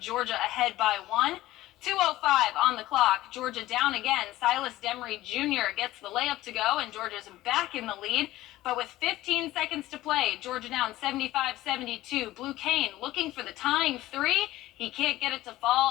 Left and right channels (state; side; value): quieter; right; 16.2 dB